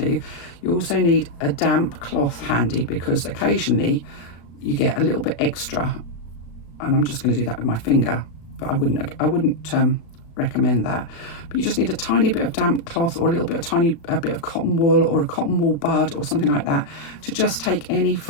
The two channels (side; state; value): right; late; 35 ms